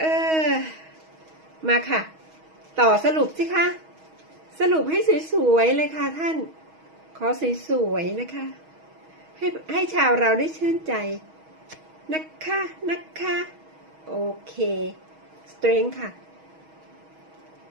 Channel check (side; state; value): left; late; 6.3 ms